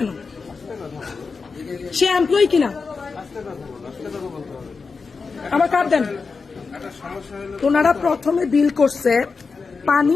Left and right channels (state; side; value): quieter; right; 4.7 dB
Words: সে এমপ্লয়ি কিনা? আমার কার্ড দেন। ওনারা প্রথমে বিল করছে পানি